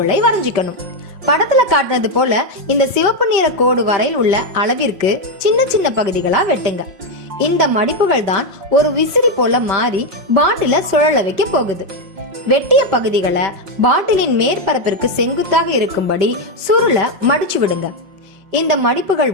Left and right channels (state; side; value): late; left; 5.1 ms